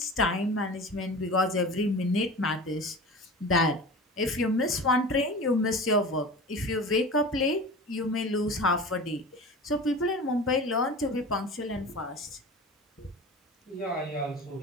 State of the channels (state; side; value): normal; both; correlation 0.35